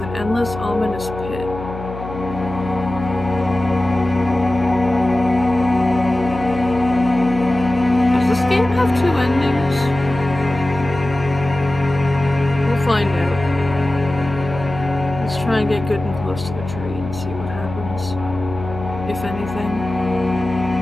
an endless, ominous pit. Does this game have two endings? We'll find out. Let's try and get good and close to the tree and see what happens. If anything.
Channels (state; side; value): noise; left; hum, 11 dB below the sound